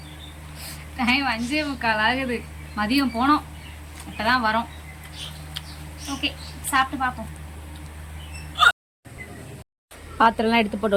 டைம் 5:45 ஆகுது. மதியம் போனோம், இப்போ தான் வரோம். ஓகே, சாப்பிட்டு பார்ப்போம். பாத்திரம்லாம் எடுத்து போட்டு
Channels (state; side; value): identical; both; correlation 1.00